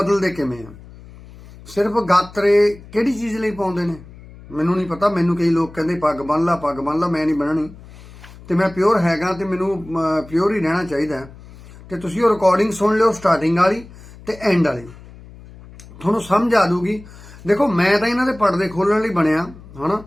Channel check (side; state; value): left; noise; hum, 19 dB below the sound